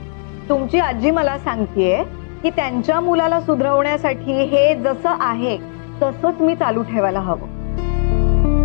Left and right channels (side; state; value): right; silent; 68 dB below the other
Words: तुमची आजी मला सांगतेय की त्यांच्या मुलाला सुधरवण्यासाठी हे जसं आहे तसंच मी चालू ठेवायला हवं।